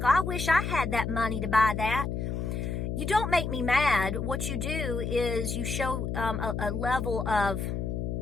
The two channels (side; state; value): left; noise; hum, 2 dB below the sound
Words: I wish I had that money to buy that. You don't make me mad. What you do is you show a level of